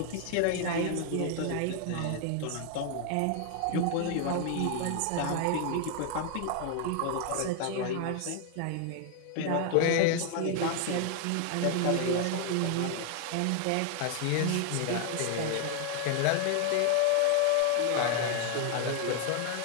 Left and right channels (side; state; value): both; different; correlation 0.00